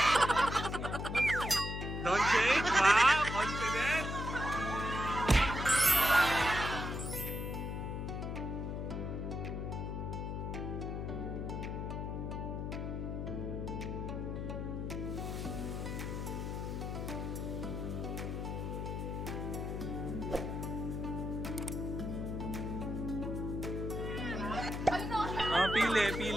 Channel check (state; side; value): noise; left; hum, 3 dB below the sound